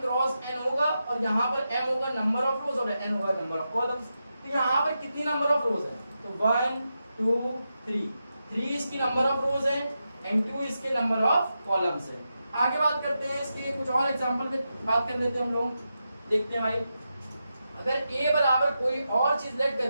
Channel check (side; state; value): both; inverted; correlation -0.88